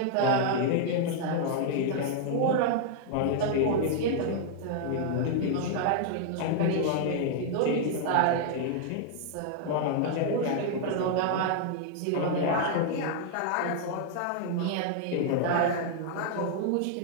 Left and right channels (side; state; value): both; different; correlation 0.00